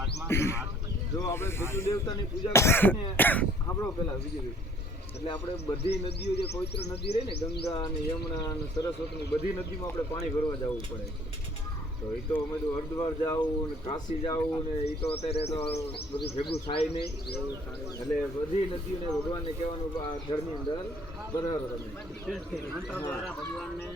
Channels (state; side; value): normal; both; correlation 0.57